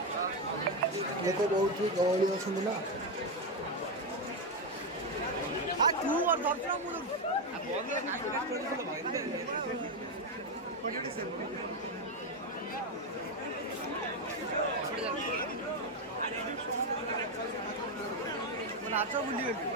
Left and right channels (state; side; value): normal; both; correlation 0.07